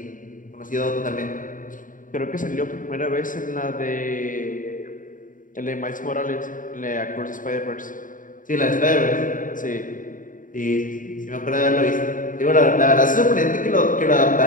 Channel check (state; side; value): late; right; 0.39 ms